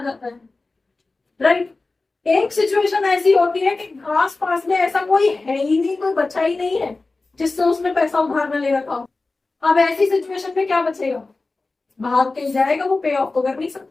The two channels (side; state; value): right; quieter; 3.5 dB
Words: जाता है, राइट। एक सिचुएशन ऐसी होती है कि आस पास में ऐसा कोई है ही नहीं, कोई बचा ही नहीं है जिससे उसने पैसा उधार में ले रखा हो। अब ऐसी सिचुएशन में क्या बचेगा, भाग के जाएगा, वो पे ऑफ तो कर नहीं